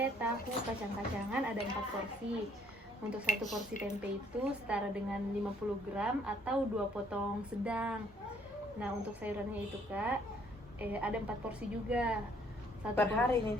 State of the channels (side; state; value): both; normal; correlation 0.64